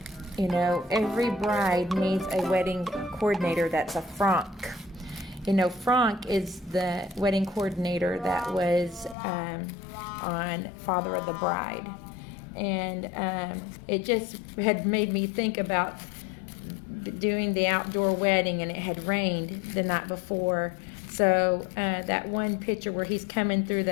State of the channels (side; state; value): right; drops out; at 9.2 s